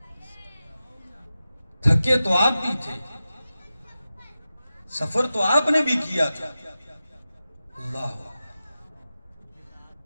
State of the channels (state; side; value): inverted; both; correlation -0.94